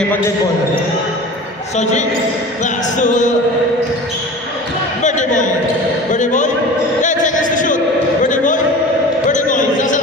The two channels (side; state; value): both; normal; correlation 0.37